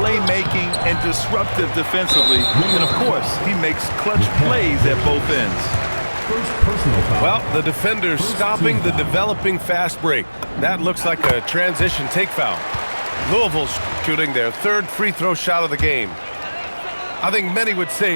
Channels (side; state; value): both; inverted; correlation -1.00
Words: and disruptive defensively. And, of course, he makes clutch plays at both ends. Well, the defender's stopping the developing fast break. That looks like a transition take foul. Louisville's shooting their third free throw shot of the game. I think many would